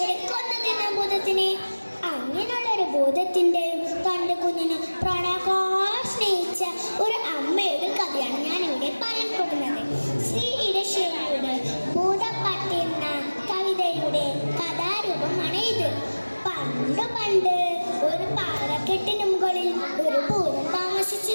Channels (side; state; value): both; inverted; correlation -1.00